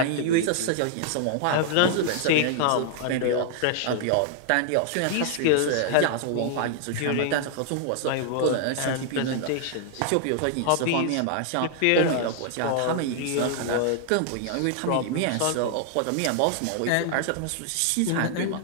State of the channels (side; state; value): both; different; correlation 0.00